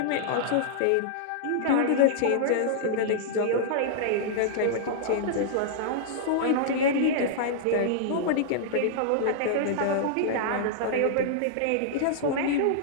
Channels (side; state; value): both; different; correlation -0.01